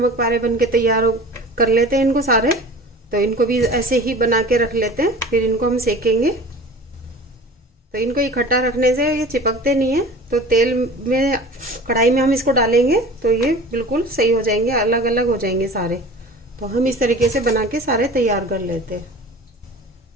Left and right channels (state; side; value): normal; both; correlation 0.40